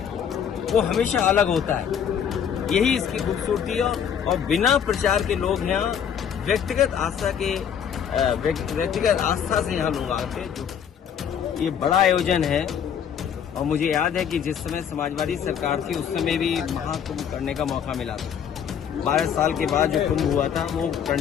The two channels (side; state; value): right; quieter; 8.2 dB